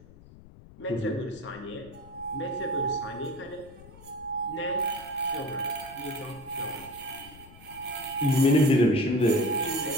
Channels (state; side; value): noise; left; rumble, 21 dB below the sound